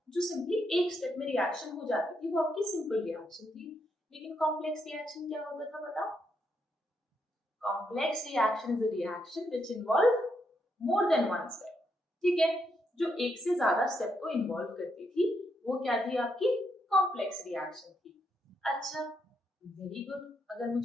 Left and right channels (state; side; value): normal; both; correlation 0.79